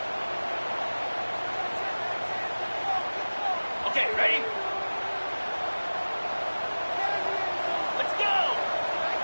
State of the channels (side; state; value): both; inverted; correlation -1.00